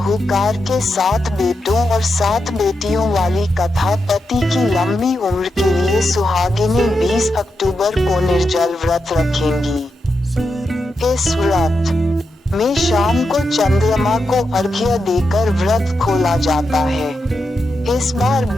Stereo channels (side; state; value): both; normal; correlation 0.86